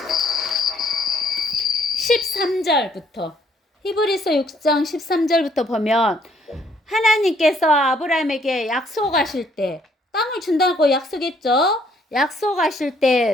13절부터 히브리서 6장 13절부터 보면 하나님께서 아브라함에게 약속하실 때 땅을 준다고 약속했죠. 약속하실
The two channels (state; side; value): normal; both; correlation 0.65